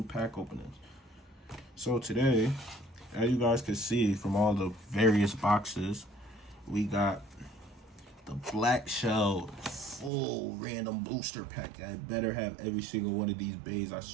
pack openings. So today, as you guys can see from all the various boxes, we got the black shell full random booster pack. I better have every single one of these bays. I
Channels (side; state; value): left; drops out; at 10.1 s